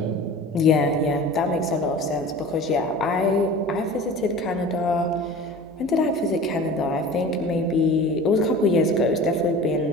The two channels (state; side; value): normal; both; correlation 0.38